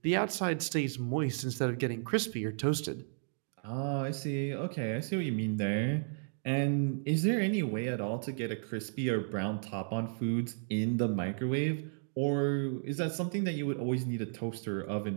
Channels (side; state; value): left; silent; digital silence